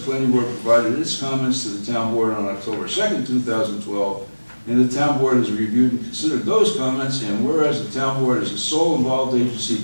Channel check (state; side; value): inverted; both; correlation -1.00